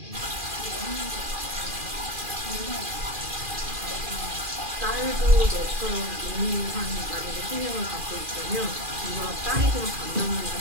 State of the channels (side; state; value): left; late; 2.4 ms